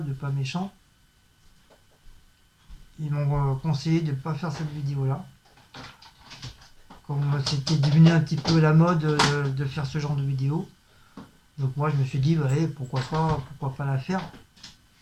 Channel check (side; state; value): both; identical; correlation 1.00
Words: pas méchant, ils m'ont conseillé de ne pas faire cette vidéo là. Comme c'était devenu un petit peu la mode de faire ce genre de vidéo. Donc moi je me suis dit, ouais, pourquoi pas la faire.